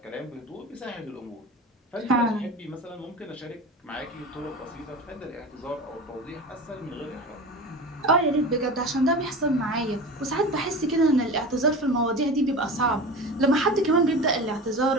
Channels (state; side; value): normal; both; correlation 0.31